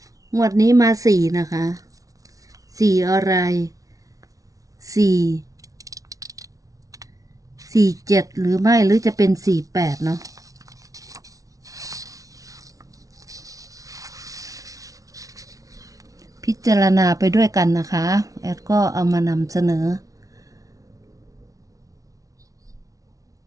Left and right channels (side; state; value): left; late; 0.17 ms